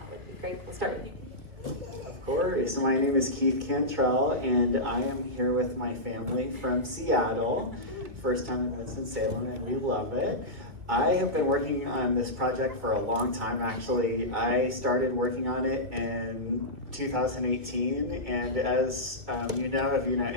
would be great. We'll start with you. Of course. My name is Keith Cantrell, and I am here with my family from Seattle. First time in Winston-Salem, and we love it. I have been working on this project for a long time, actually. I started working on it in 2018, and as you know, if you know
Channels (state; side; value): late; left; 2.1 ms